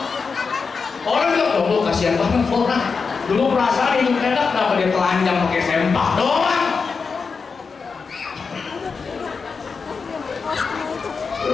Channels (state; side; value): quieter; right; 5.1 dB